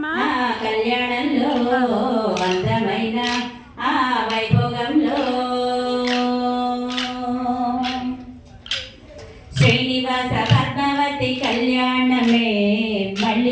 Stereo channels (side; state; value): both; identical; correlation 1.00